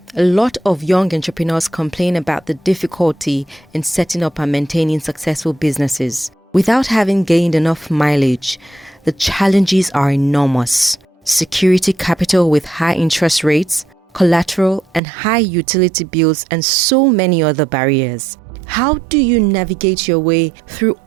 a lot of young entrepreneurs complain about the difficulty in setting up and maintaining successful businesses. Without having gained enough mileage, the challenges are enormous. Security capital with high interest rates, collateral and high utility bills, and so many other barriers. How do you navigate your way through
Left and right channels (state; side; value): drops out; left; at 15.0 s